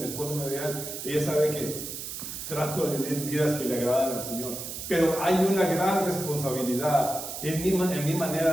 esposa me vean, ella sabe que trato de vivir vidas que le agradan al Señor. Pero hay una gran responsabilidad en mi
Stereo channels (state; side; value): noise; right; hiss, 7 dB below the sound